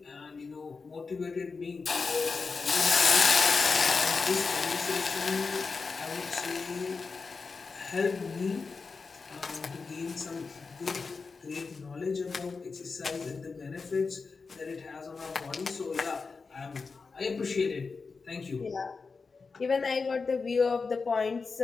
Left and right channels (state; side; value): quieter; right; 4.6 dB